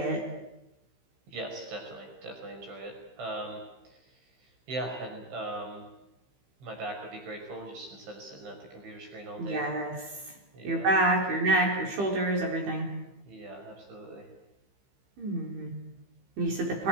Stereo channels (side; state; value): left; late; 15 ms